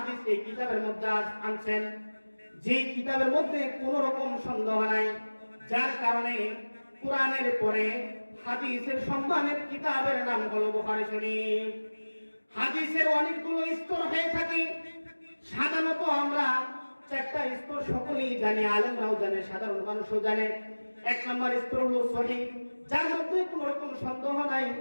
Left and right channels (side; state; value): both; inverted; correlation -1.00